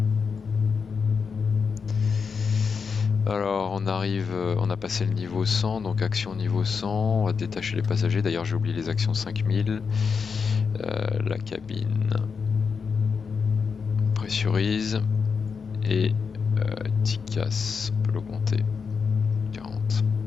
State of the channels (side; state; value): right; quieter; 5.7 dB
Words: Alors on arrive, on a passé le niveau 100, donc action niveau 100, on va détacher les passagers, d'ailleurs j'ai oublié les actions 5000, la cabine pressurise et TICAS, on peut l'augmenter, 40.